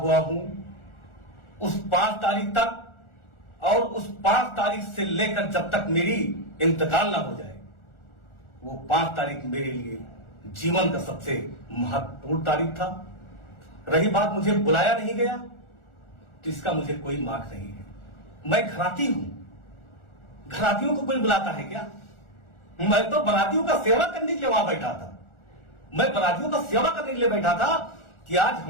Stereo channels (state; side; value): late; right; 1.4 ms